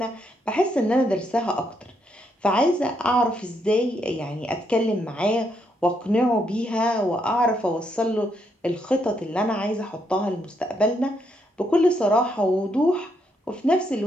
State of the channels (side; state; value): both; normal; correlation 0.76